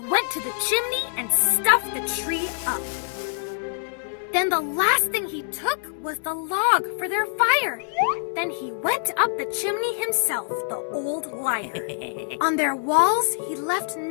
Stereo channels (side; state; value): right; silent; 62 dB below the other